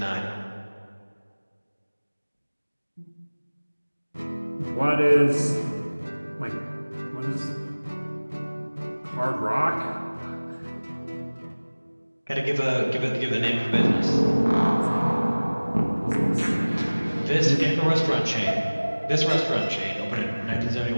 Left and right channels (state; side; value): inverted; both; correlation -1.00